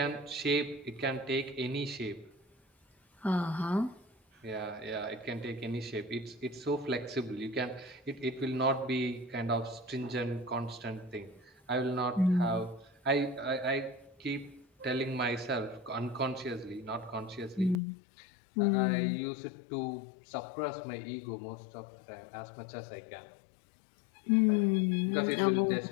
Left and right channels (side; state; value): right; drops out; at 17.8 s